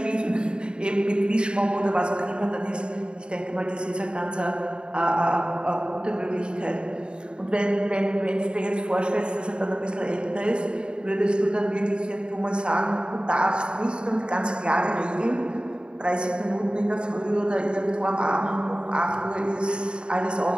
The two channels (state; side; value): late; left; 0.051 ms